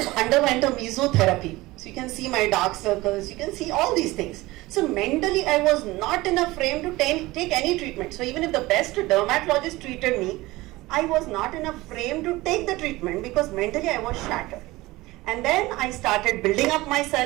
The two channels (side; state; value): left; quieter; 19.8 dB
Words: underwent a mesotherapy, so you can see my dark circles, you can see all these things. So mentally I was not in a frame to take any treatment. So even if the best dermatologist treated me, I was not in a frame to take the treatment because mentally I was shattered. And then I started building up